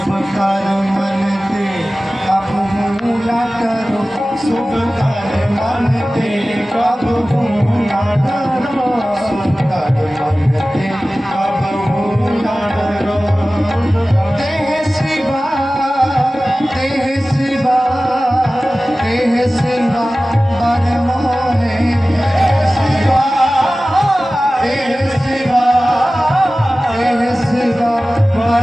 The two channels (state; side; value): normal; both; correlation 0.97